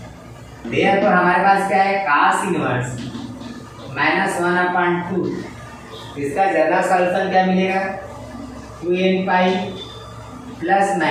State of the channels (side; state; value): both; identical; correlation 1.00